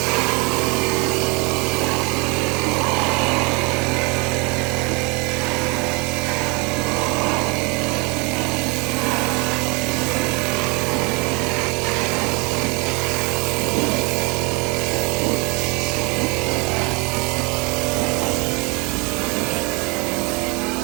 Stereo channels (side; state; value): left; quieter; 29.1 dB